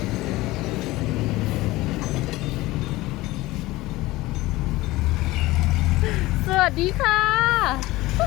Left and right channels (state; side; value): quieter; right; 19.0 dB